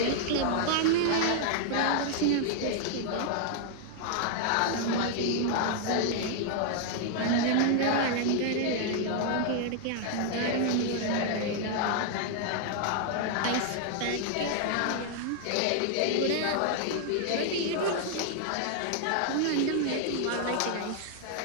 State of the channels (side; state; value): both; different; correlation 0.00